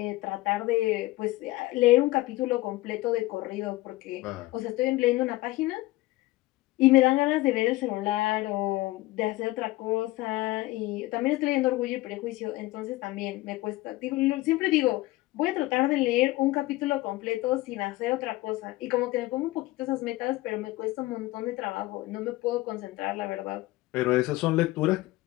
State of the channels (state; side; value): quieter; right; 18.7 dB